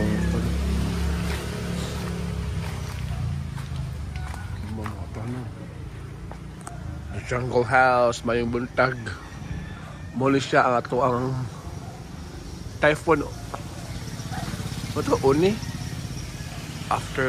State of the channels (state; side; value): identical; both; correlation 1.00